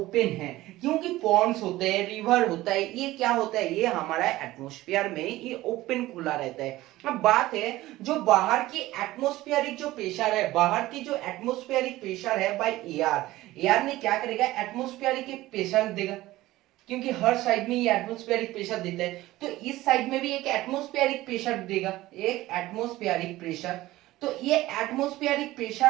है, क्योंकि पॉन्ड्स होते हैं, रिवर होता है, ये क्या होता है, ये हमारा एटमॉस्फेयर में ये ओपन खुला रहता है। अब बात है जो बाहर की एटमॉस्फेरिक जो प्रेशर है, बाहर की जो एटमॉस्फेरिक प्रेशर है बाय एयर ने क्या करेगा, एटमॉस्फेरिक प्रेशर देगा, क्योंकि हर साइड में ये एटमॉस्फेरिक प्रेशर देता है, तो इस साइड में भी एक एटमॉस्फेरिक प्रेशर देगा, एक एटमॉस्फेरिक प्रेशर। तो ये एटमॉस्फेरिक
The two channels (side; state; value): left; quieter; 17.1 dB